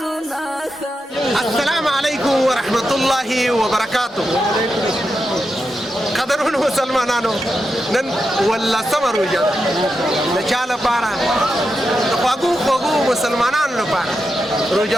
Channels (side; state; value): both; normal; correlation 0.87